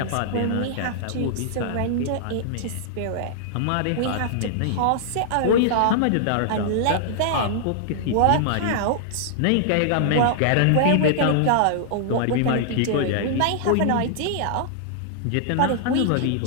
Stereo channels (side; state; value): both; different; correlation -0.01